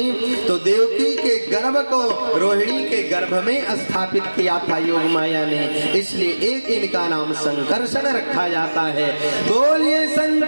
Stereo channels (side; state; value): both; inverted; correlation -1.00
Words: तो देवकी के गर्भ को रोहिणी के गर्भ में स्थापित किया था योग माया ने, इसलिए एक इनका नाम संकर्षण रखा जाता है। बोलिए